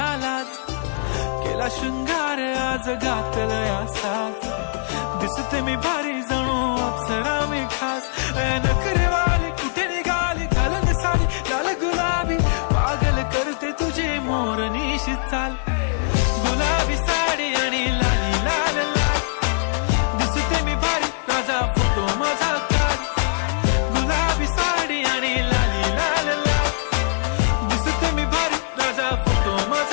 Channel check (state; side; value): silent; right; digital silence